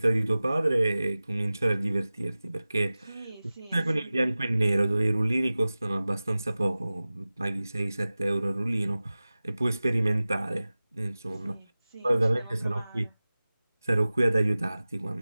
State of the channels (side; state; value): both; inverted; correlation -0.97